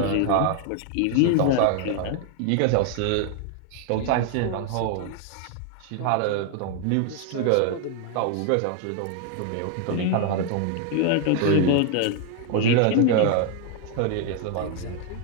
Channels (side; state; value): both; different; correlation 0.00